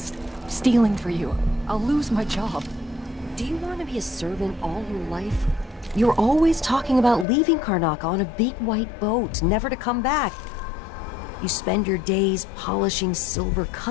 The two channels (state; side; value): drops out; right; at 7.2 s